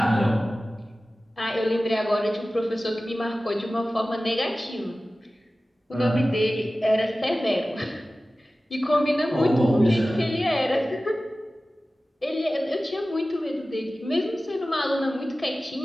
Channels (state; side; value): normal; both; correlation 0.96